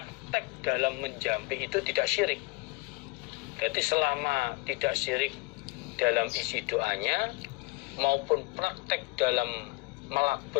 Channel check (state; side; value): quieter; right; 25.5 dB